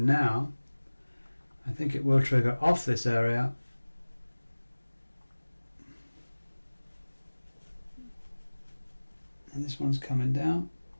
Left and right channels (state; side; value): inverted; both; correlation -1.00